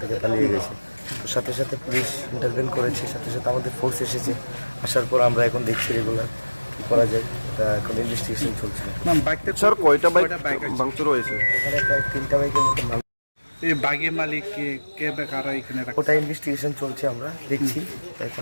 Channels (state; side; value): inverted; both; correlation -1.00